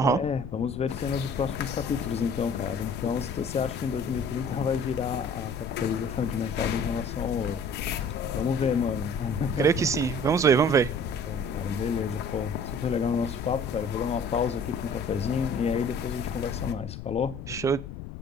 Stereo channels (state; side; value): noise; left; rumble, 10 dB below the sound